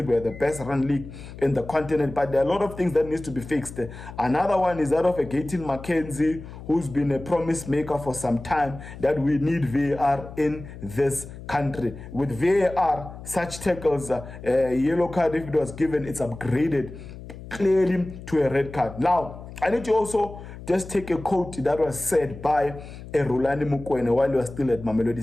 we're the best run league in the continent, but there are a lot of things that needs to be fixed. Another one is that of a Gayton McKenzie, who's been a promise maker for some time, that we need VAR in this country. With VAR, such tackles, a yellow card, if it was given, it's upgraded clearly to a red card. Now, I need to also just take a quote that was said by Rulani Mukwene while he was still at Mamelodi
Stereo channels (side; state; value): left; noise; hum, 14 dB below the sound